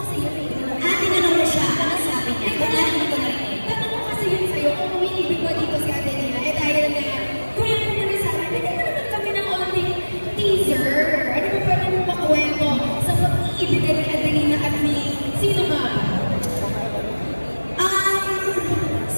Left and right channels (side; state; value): both; inverted; correlation -1.00